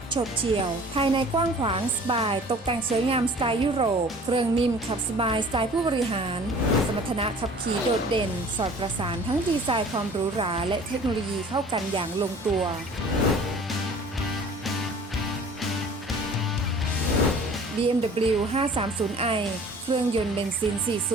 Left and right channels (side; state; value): both; normal; correlation 0.47